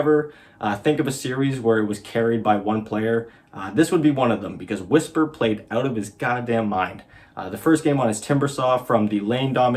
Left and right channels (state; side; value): identical; both; correlation 1.00